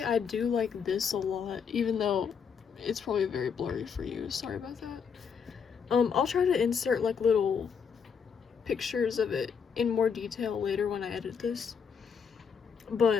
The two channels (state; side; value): quieter; right; 6.5 dB